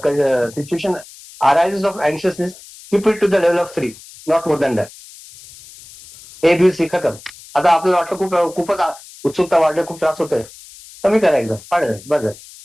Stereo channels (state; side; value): noise; left; hiss, 20 dB below the sound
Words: situation arises of anxiousness, keep it to the level of 3, not more than that. A B C खतम. आता आपल्याला वाटतं खूपच उत्सुकता वाढली, खूप त्रास होतोय, कमी करा एकदम, पाडलं बस.